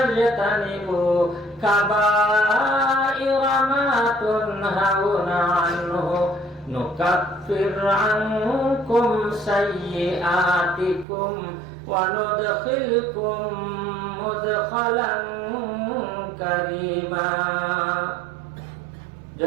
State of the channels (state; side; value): drops out; left; at 11.1 s